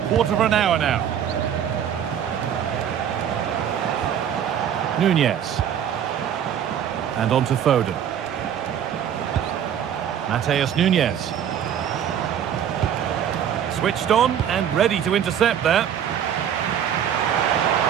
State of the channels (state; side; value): quieter; left; 9.2 dB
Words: quarter of an hour now. Nunez. And on to Foden. Matheus Nunez. Switched on and ready to intercept there.